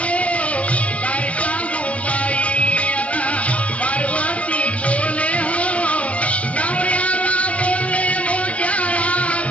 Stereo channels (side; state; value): right; late; 0.064 ms